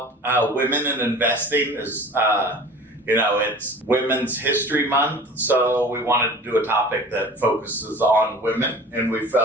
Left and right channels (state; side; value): normal; both; correlation 0.41